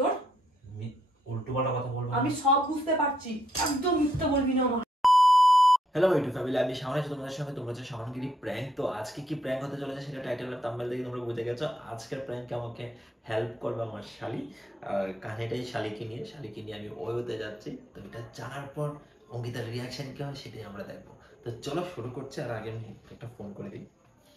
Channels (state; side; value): normal; both; correlation 0.76